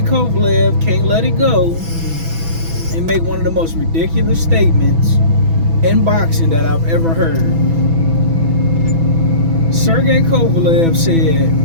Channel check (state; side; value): late; left; 6.1 ms